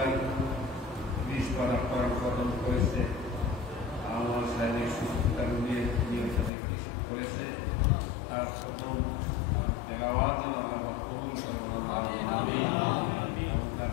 20 পারা করার কদম করেছে আমার শারীরিক সুস্থতা নিয়ে করেছে তার প্রথম তেলাওয়াত আল্লাহ কবুল করেন তার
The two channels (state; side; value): drops out; right; at 6.5 s